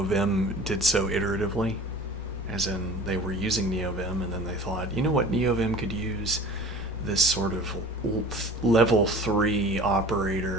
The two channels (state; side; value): normal; both; correlation 0.41